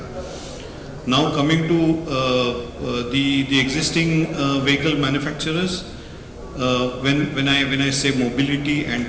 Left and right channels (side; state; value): both; identical; correlation 1.00